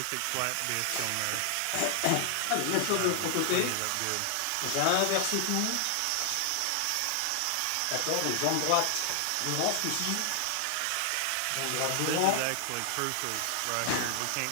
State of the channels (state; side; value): different; both; correlation 0.00